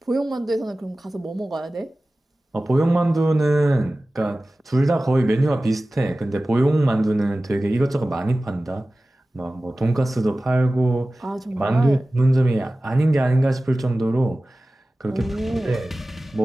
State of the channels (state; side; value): normal; both; correlation 0.96